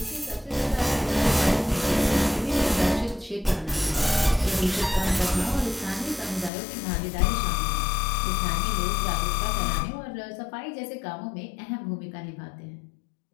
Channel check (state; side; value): drops out; right; at 6.5 s